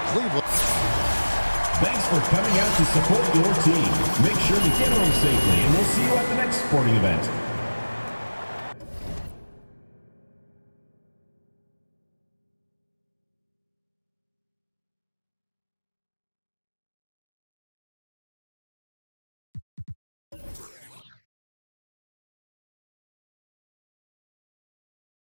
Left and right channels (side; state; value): both; inverted; correlation -1.00